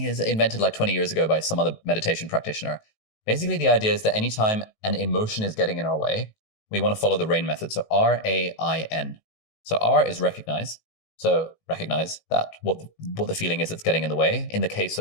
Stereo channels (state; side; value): late; right; 18 ms